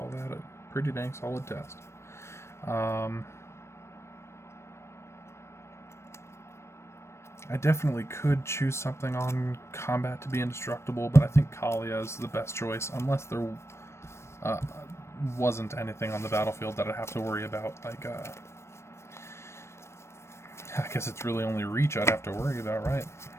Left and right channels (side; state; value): right; late; 0.13 ms